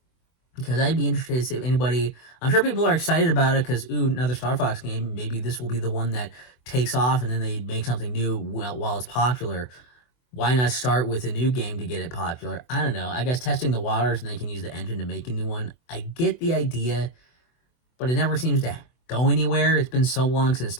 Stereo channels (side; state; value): right; late; 24 ms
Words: Because I'd be interested to see if anybody. I'm sure people are excited about it because another Star Fox game. Maybe this will be the one that takes off, and then they make something new while it's popular. Why not start with a new game to get it popular? I don't know. I guess testing the waters, and they can use the engine to make a new one. I get the idea, but it never seems to go anywhere. It's been so long since